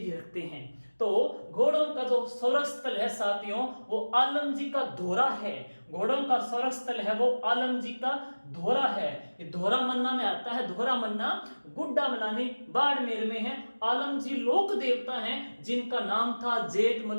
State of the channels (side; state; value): both; inverted; correlation -1.00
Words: रखते हैं। तो घोड़ों का जो स्वर्ग स्थल है साथियों वो आलम जी का धोरा है। घोड़ों का स्वर्ग स्थल है वो आलम जी का धोरा है। ये धोरा मन्ना में आता है, धोरा मन्ना गुड्डा मलानी बाड़मेर में है। आलम जी लोक देवता हैं जिनका नाम था जेठ